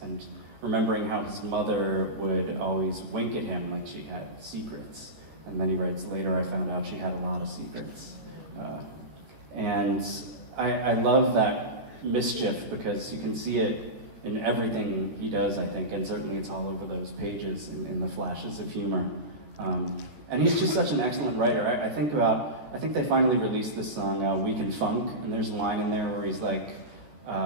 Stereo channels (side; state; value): left; late; 14 ms